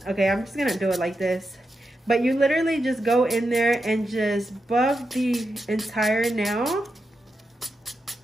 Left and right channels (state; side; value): normal; both; correlation 0.87